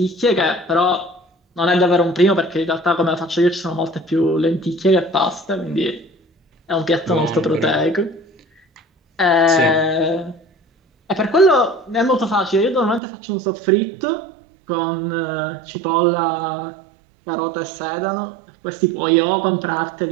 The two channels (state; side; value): drops out; left; at 13.0 s